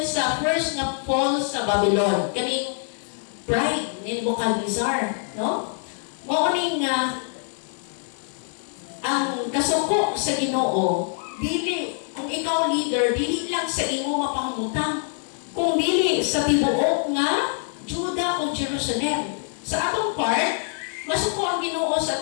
sa first na fall sa Babylon. Kaning pride ni Nebuchadnezzar, no? Mo ning ang kasuko sa Ginoo, dili kung ikaw leader, dili lang sa imo mapangutang, kung dili sa tibuok nga Juda o Jerusalem. Sa atong part, masuko ang Ginoo sa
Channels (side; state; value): right; silent; 55 dB below the other